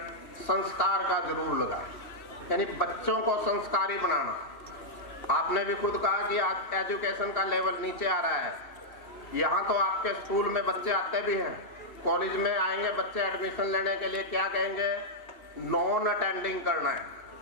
संस्कार का जरूर लगाए, यानी बच्चों को संस्कारी बनाना। आपने भी खुद कहा कि आज एजुकेशन का लेवल नीचे आ रहा है। यहाँ तो आपके स्कूल में बच्चे आते भी हैं, कॉलेज में आएंगे बच्चे एडमिशन लेने के लिए, क्या कहेंगे, नॉन अटेंडिंग करना है।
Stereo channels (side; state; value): right; late; 2.8 ms